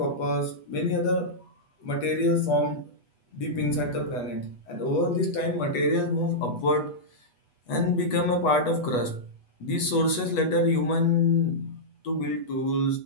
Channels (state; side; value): late; right; 8.2 ms